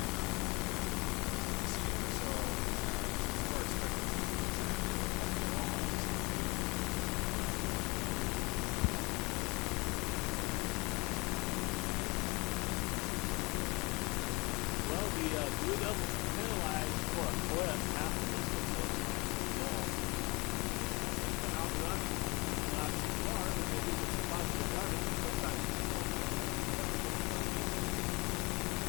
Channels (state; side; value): quieter; right; 26.5 dB